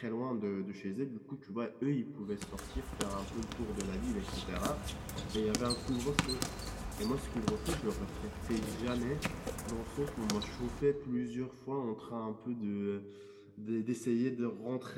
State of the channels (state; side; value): identical; both; correlation 1.00